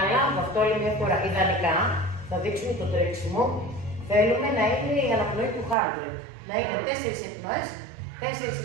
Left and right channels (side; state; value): left; drops out; at 5.8 s